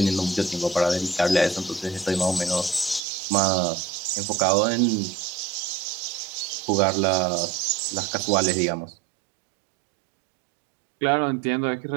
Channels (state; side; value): drops out; left; at 3.0 s